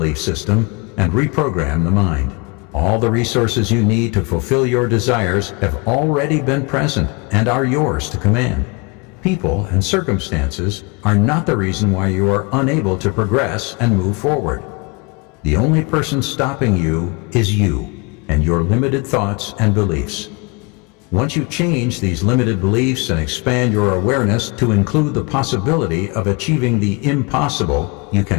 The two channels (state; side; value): quieter; right; 29.4 dB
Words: system and reprogram the mind. All the resources you need to fulfill your desires have already been present and are yours to command. People and circumstances are not the reason why you are unable to progress and move forward. The only person stopping you is you and your limited thoughts and beliefs. Once you change these limited beliefs and expand your awareness to include the possibility of achieving the impossible, you